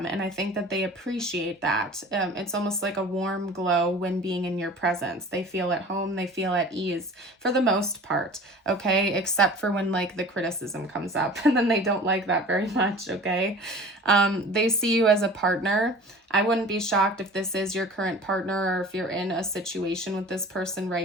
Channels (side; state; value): both; normal; correlation 0.42